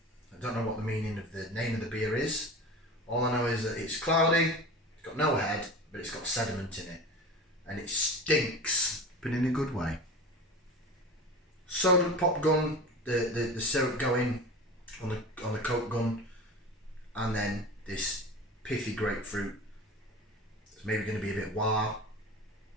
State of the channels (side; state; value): both; normal; correlation 0.33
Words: I don't know what the meaning of the name of the beer is. All I know is that it's cloudy, it's got no head, but it's got sediment in it. And it stinks, but in a good way. Soda pop gun, the syrup going on the Coke gun, and then this pithy grapefruit. It's maybe going to be a bit wah.